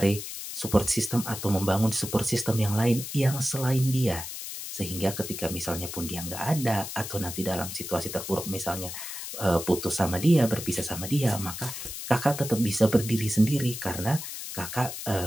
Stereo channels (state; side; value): noise; left; hiss, 8 dB below the sound